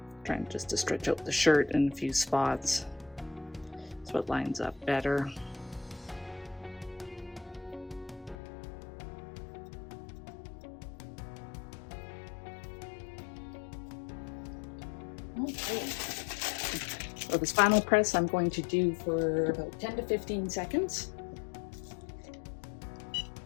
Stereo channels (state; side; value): drops out; right; at 8.3 s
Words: Trying just to stretch out the shirt in a few spots so it lines up better. So this final press I'm going to do for about 10 to 15 seconds.